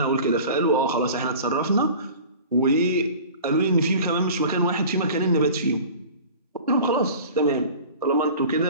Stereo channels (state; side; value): inverted; both; correlation -0.41